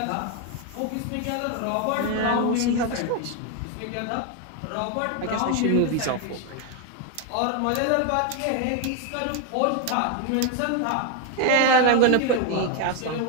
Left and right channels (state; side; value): different; both; correlation 0.01